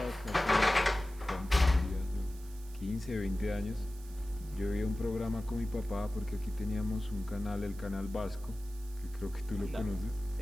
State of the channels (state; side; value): noise; right; hiss, 21 dB below the sound